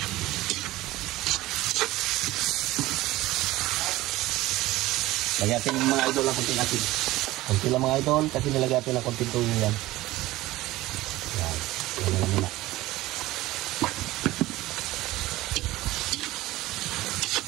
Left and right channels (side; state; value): left; quieter; 17.6 dB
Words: Lagyan natin mga idol ng konting asin. Konti lang mga idol kasi nilagyan natin ng konting tuyo yan. Yan. Yan na muna.